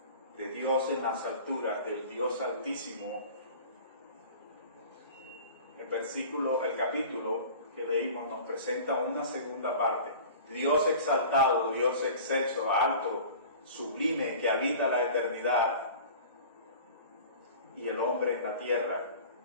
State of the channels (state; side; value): inverted; both; correlation -0.41